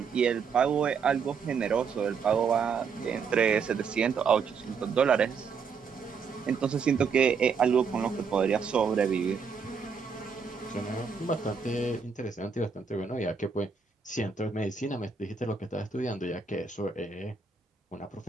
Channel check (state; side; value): quieter; left; 5.8 dB